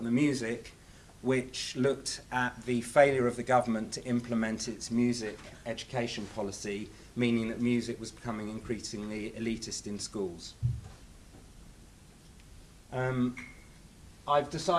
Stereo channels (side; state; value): both; identical; correlation 1.00